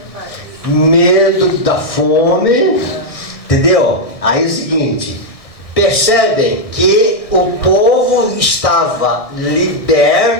medo da fome, entendeu? Aí é o seguinte, percebem que o povo estava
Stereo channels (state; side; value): late; right; 1.6 ms